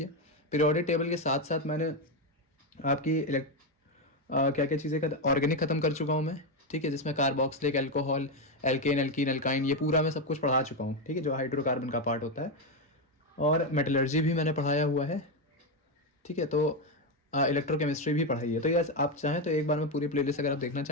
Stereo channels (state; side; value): normal; both; correlation 0.08